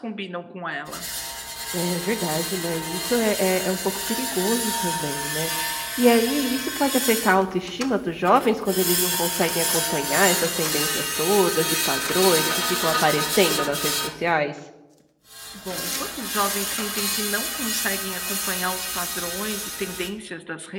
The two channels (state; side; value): identical; both; correlation 1.00